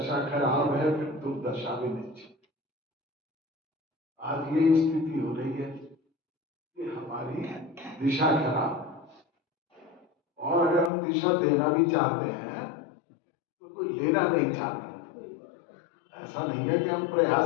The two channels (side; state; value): right; drops out; at 10.9 s